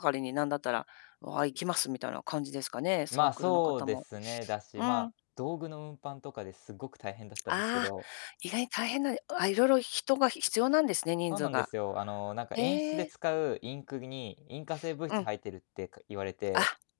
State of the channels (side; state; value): right; silent; digital silence